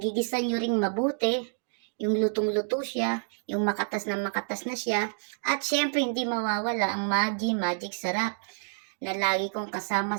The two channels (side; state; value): left; silent; digital silence